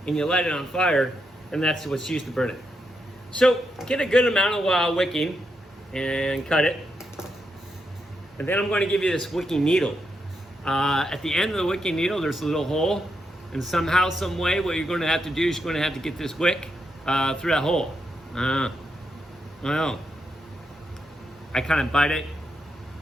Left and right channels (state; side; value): normal; both; correlation 0.83